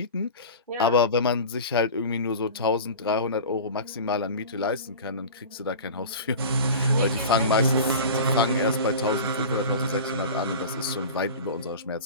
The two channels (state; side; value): inverted; both; correlation -0.34